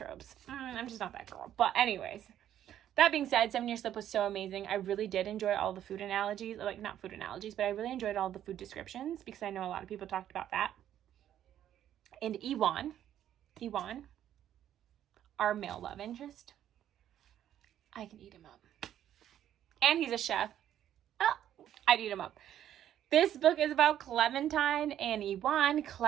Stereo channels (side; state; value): left; quieter; 11.0 dB